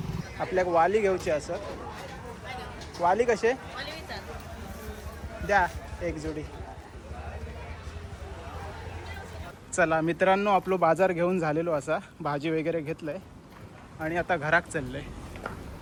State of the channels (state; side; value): identical; both; correlation 1.00